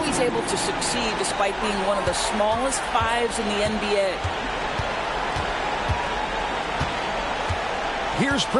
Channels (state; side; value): identical; both; correlation 1.00